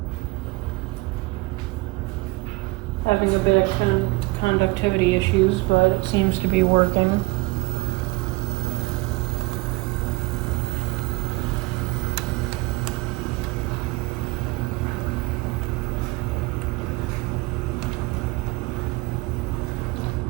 Having a bit of conductivity issues, but it seems to be working.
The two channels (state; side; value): quieter; left; 22.8 dB